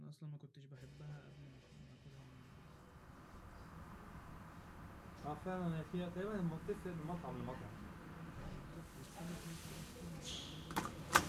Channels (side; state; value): both; identical; correlation 1.00